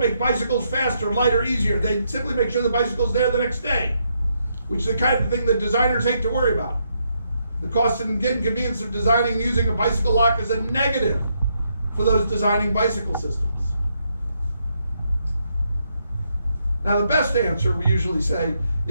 make bicycles faster, lighter, easier. They simply make sure the bicycle's there the next day, which is the kind of thing that designers hate to worry about. The cost and inconvenience of designing and using a bicycle lock is a negative for those designing bicycle systems. Now, the best answer, we usually say,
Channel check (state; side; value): inverted; both; correlation -0.78